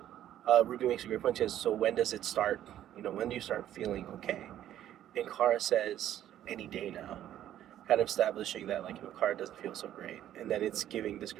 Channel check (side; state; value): left; quieter; 11.7 dB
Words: Ruby makes a great point. She says, so when does it start? When do you start feeling okay? And Kara says, any day now, kind of establishing that like Kara doesn't feel so great, and then it's giving this